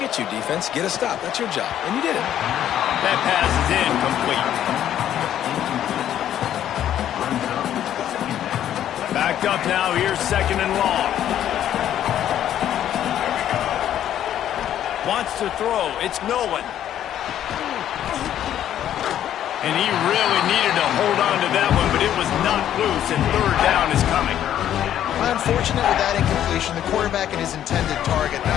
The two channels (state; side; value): quieter; right; 11.0 dB